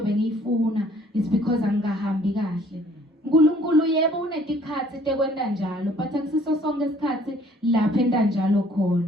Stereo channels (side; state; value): both; normal; correlation 0.57